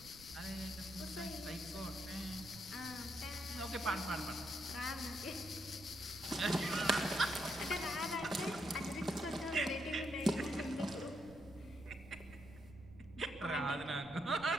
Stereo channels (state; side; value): noise; right; rumble, 18 dB below the sound